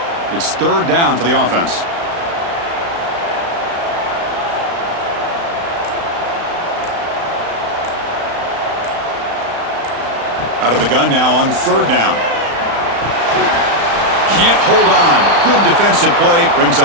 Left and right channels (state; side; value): late; left; 35 ms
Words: It's 3rd down for the offense. Out of the gun now on 3rd down. Can't hold on. Good defensive play. Brings